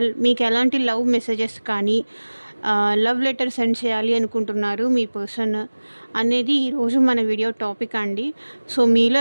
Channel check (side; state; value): both; inverted; correlation -1.00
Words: మీకు ఎలాంటి లవ్ మెసేజెస్ కానీ లవ్ లెటర్ సెండ్ చేయాలి అనుకుంటున్నారు మీ పర్సన్ అనేది ఈరోజు మన వీడియో టాపిక్ అండి. సో మీలో